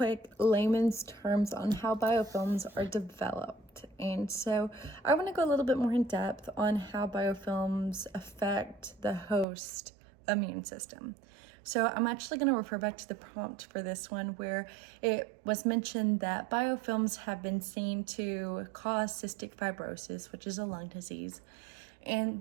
layman's terms on how biofilms are developed. And so I want to go a little bit more in depth on how biofilms affect the host immune system. So I'm actually going to refer back to the prompt for this one, where it was mentioned that biofilms have been seen to cause cystic fibrosis, which is a lung disease.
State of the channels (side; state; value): left; drops out; at 9.5 s